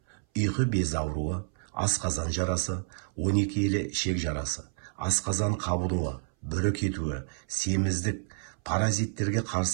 Ұйқы безі ауруы, асқазан жарасы, 12 елі ішек жарасы, асқазан қабынуы, бүрі кетуі, семіздік, паразиттерге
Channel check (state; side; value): silent; left; 58 dB below the other